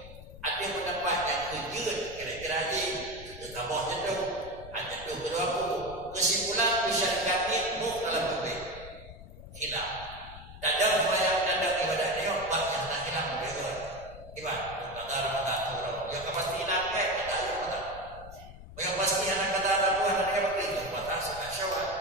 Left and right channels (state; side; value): noise; left; rumble, 16 dB below the sound